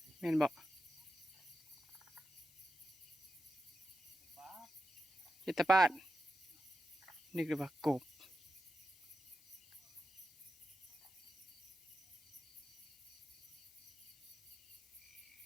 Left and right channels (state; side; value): noise; left; hiss, 25 dB below the sound